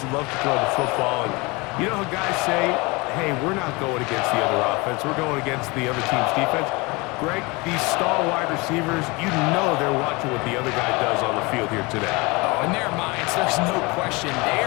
that love to throw the football, and you know how guys say, hey, we're not going against the other offense, we're going against the other team's defense. Greg, these star wide receivers, you know they're watching what the other guy does on the field here today. Oh, in their minds, there's no question. They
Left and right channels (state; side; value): quieter; right; 25.6 dB